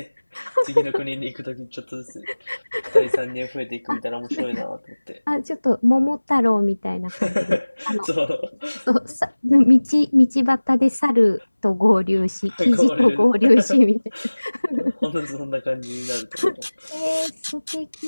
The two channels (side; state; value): both; inverted; correlation -1.00